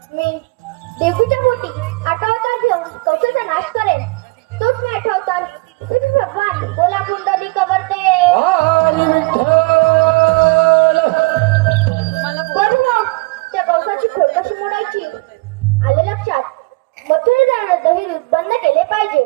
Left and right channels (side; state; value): left; quieter; 24.4 dB